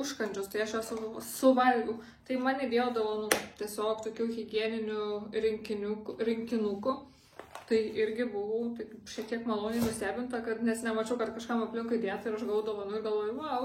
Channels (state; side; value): identical; both; correlation 1.00